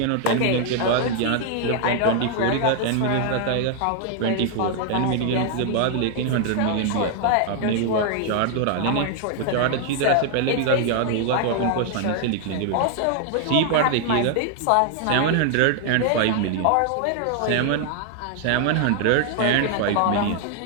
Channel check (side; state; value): both; different; correlation 0.00